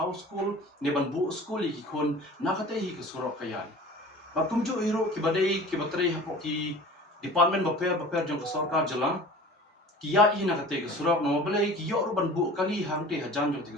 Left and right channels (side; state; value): both; normal; correlation 0.41